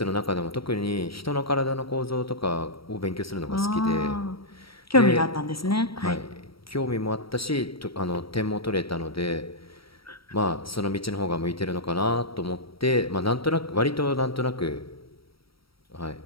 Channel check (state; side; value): late; right; 0.75 ms